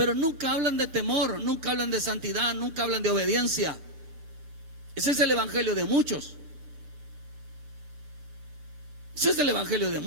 nunca hablan de temor. Nunca hablan de santidad. Nunca hablan de obediencia. Ese es el evangelio de muchos. Ese es el evangelio de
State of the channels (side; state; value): left; late; 6.7 ms